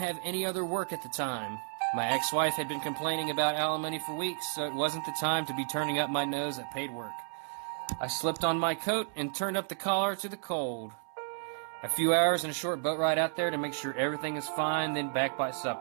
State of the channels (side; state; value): left; silent; 56 dB below the other